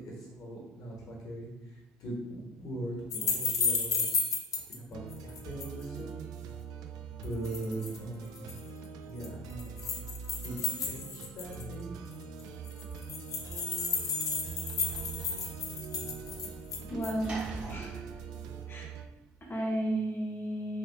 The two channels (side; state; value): both; normal; correlation 0.38